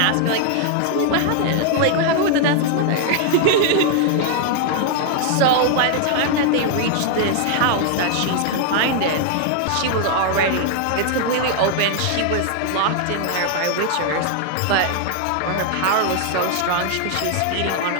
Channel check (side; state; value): both; different; correlation 0.00